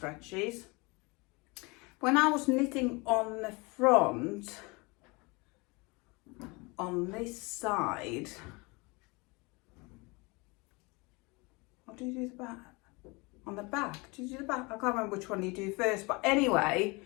When I was knitting on the front, on this side, or do you do the back? On the back, do you do the back? I can't remember which one you do first, but anyway,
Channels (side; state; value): right; quieter; 26.8 dB